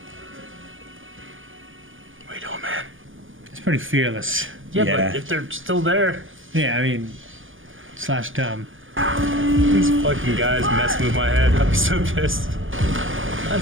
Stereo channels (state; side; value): late; left; 0.58 ms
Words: What are you doing, man? It's pretty fearless. Yeah, Yeah. but if they're still there, Yeah, I mean, / dumb. these fucking guys messing with my head, I'd be so pissed. I'm